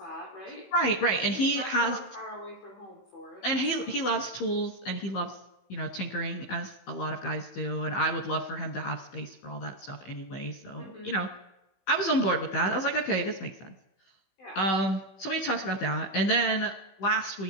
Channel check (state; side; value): late; right; 16 ms